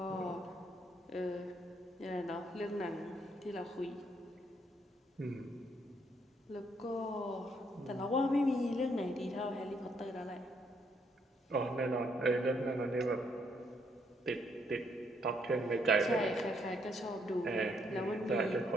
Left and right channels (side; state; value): both; normal; correlation 0.72